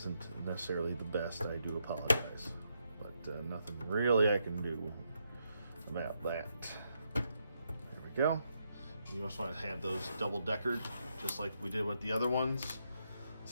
necessarily the best, I do apologize, but nothing really I can do about that. There we go. You just want to have those double-deckered just like we did with the other ones.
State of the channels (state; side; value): inverted; both; correlation -0.80